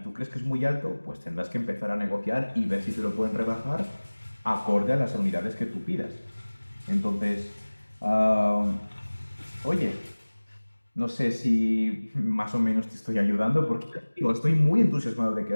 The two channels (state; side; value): inverted; both; correlation -1.00